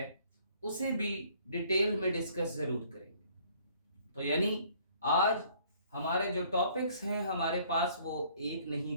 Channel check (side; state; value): both; inverted; correlation -0.59